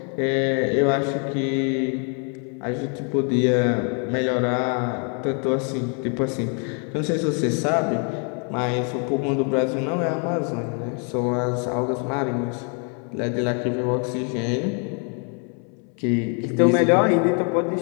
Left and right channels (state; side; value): quieter; right; 39.4 dB